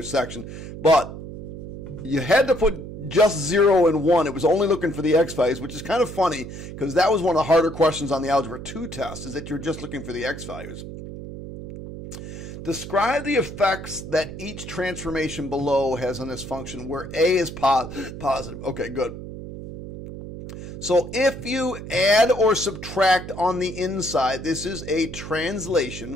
But you had to put just 0 and 1. It was only looking for the x values, which is kind of funny because that was one of the harder questions on the Algebra 2 test, is that you're just looking for the x values. Describe the effects that each transformation below has on this function where a is positive. Okay, good. So if you add or subtract on the inside, this is a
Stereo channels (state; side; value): noise; right; hum, 10 dB below the sound